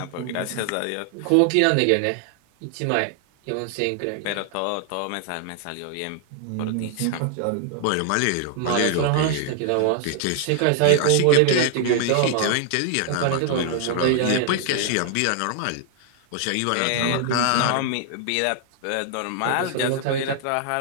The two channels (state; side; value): different; both; correlation 0.00